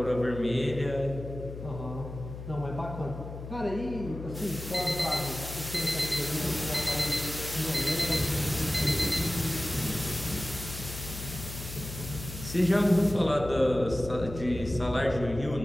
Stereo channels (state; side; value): noise; left; hum, 10 dB below the sound